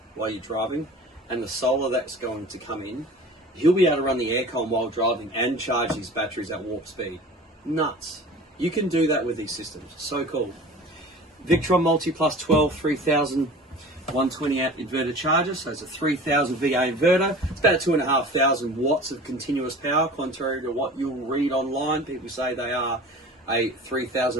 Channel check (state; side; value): normal; both; correlation 0.41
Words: while you're driving and the solar that's going to come in, he'll be able to run the aircon while driving and charge his batteries at warp speed. Nuts. You can do that with these systems. So cool. Victron Multiplus 12 3000 120 amp inverter charger, so it's a 3000 VA inverter. It's about 2,500 watts of continuous power, contrary to what you'll read online. People say they are a